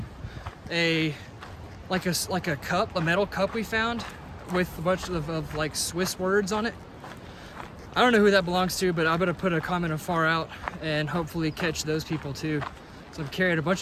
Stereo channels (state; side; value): identical; both; correlation 1.00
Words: a cup, a metal cup we found with a bunch of like Swiss words on it. I don't know who that belongs to, but I'm gonna put a comment of far out and hopefully catch those people too. So I'm carrying a bunch